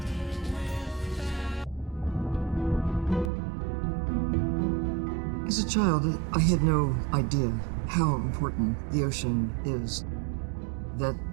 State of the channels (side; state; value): left; drops out; at 3.3 s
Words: As a child, I had no idea how important the ocean is, that